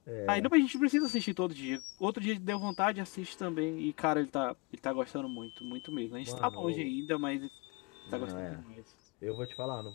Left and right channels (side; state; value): right; quieter; 27.7 dB